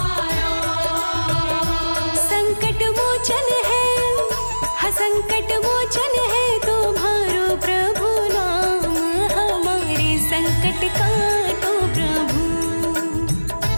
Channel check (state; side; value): inverted; both; correlation -1.00